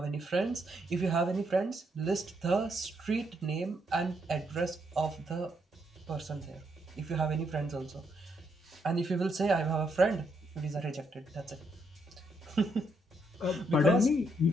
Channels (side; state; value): both; normal; correlation 0.76